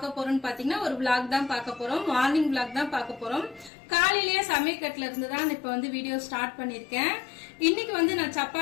போறோம்னு பாத்தீங்கன்னா ஒரு vlog தான் பார்க்க போறோம் மார்னிங் vlog தான் பார்க்க போறோம் காலையிலேயே சமையக்கட்டுல இருந்து தான் இப்போ வந்து வீடியோ ஸ்டார்ட் பண்ணிருக்கேன் இன்னைக்கு வந்து நான்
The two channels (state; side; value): drops out; right; at 3.7 s